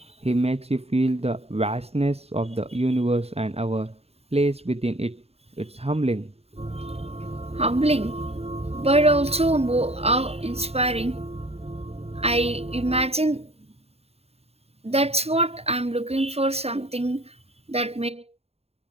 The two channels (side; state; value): left; late; 0.30 ms